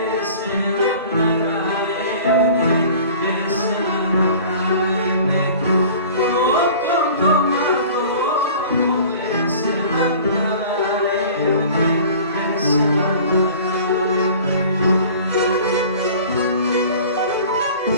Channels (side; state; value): both; inverted; correlation -0.44